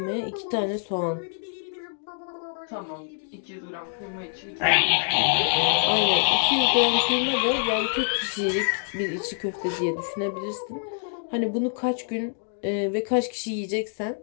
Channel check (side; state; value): right; silent; digital silence